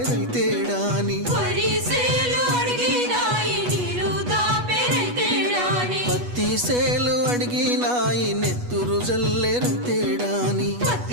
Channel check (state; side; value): late; left; 8.2 ms